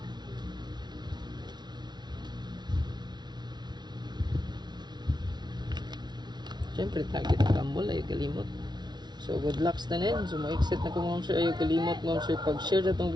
siyempre target ang rumble ayaw kalimot. So good luck sa tanin. So ma-exit na ko mga sir, ayaw kalimot mga sir pag-share na itong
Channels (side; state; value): left; late; 0.20 ms